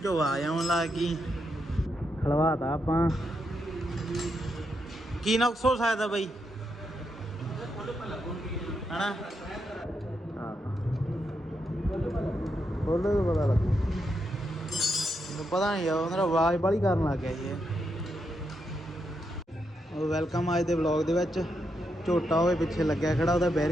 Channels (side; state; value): both; normal; correlation 0.82